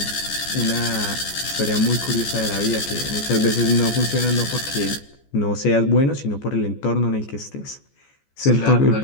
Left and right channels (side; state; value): right; late; 14 ms